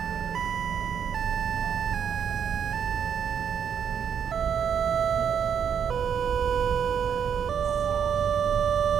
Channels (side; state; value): left; quieter; 7.8 dB